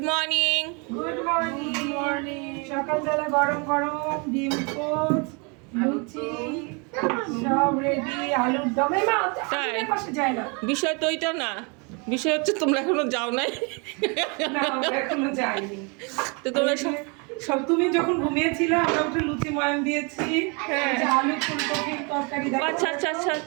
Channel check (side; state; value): left; quieter; 32.7 dB